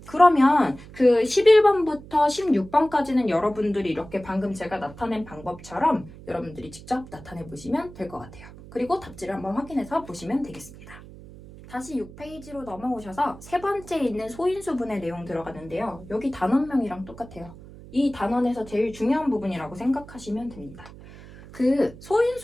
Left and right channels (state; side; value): noise; right; hum, 18 dB below the sound